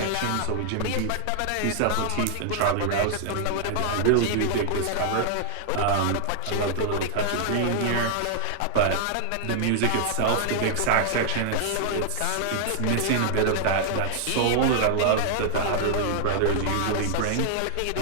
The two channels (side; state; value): both; different; correlation -0.01